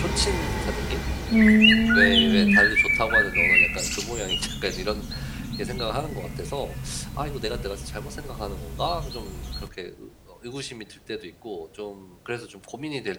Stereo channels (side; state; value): both; identical; correlation 1.00